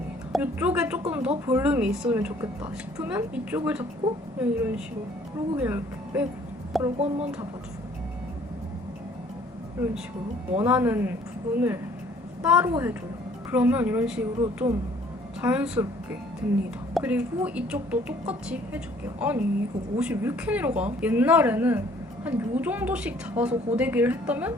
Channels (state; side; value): normal; both; correlation 0.58